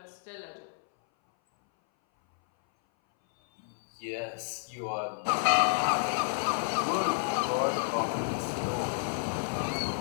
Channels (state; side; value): silent; right; 58 dB below the other